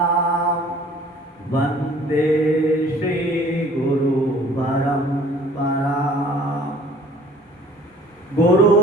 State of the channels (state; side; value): normal; both; correlation 0.52